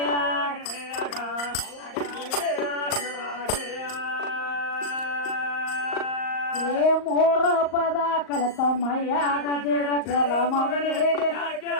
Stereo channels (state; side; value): late; right; 38 ms